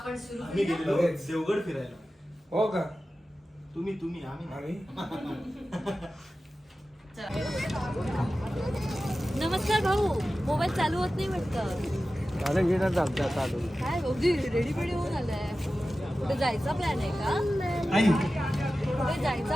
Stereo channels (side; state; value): both; normal; correlation 0.94